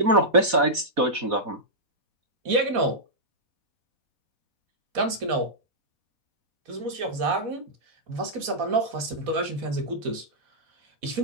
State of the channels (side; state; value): left; late; 4.1 ms